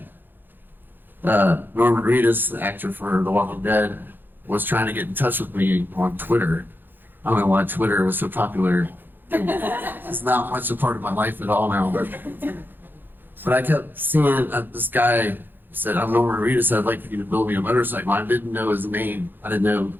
Norman Reedus, the actor for The Walking Dead, was trying to get in touch with me on Twitter. I don't know why Twitter was so popular. It's not much a part of my life at all now. But I kept seeing this guy said, I'm Norman Reedus, I'd like for you to build me a motorcycle. I didn't know his name. I knew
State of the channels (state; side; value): late; left; 0.094 ms